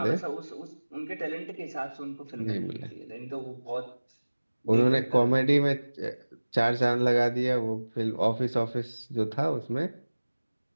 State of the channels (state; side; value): inverted; both; correlation -1.00